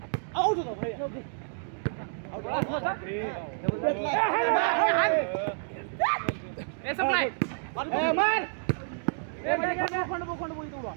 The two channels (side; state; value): left; silent; digital silence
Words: आउट होता भैया ए सप्लाय